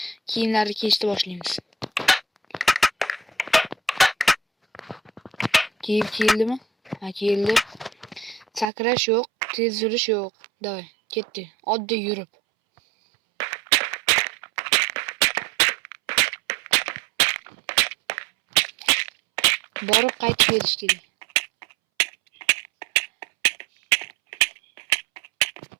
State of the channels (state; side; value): drops out; left; at 8.7 s